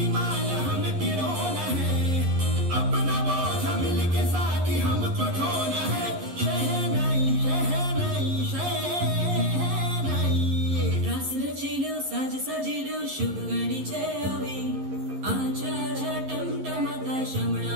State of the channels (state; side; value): late; left; 11 ms